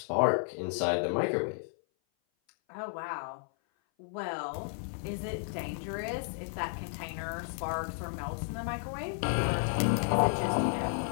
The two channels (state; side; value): silent; right; 56 dB below the other